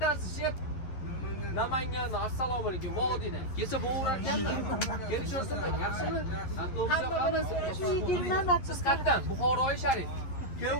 Namangan, assalomu alaykum, Vodiydan. Kesib bo'lar ekanmi? Kelishaversinlar, yaxshimi? Hamma so'rashib yigirman. Siz qayerdan? Buxoroy Sharif.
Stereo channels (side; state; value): right; late; 11 ms